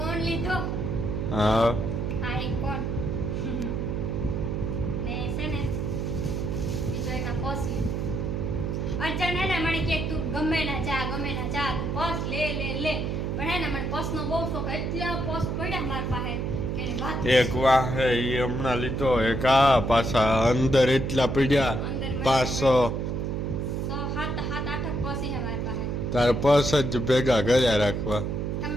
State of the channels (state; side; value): noise; right; hum, 1 dB below the sound